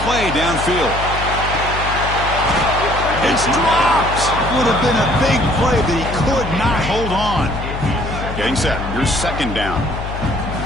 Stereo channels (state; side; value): noise; left; hum, 7 dB below the sound